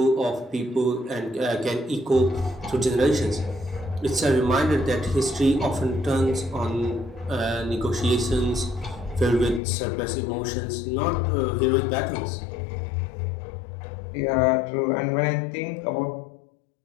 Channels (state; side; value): drops out; right; at 9.6 s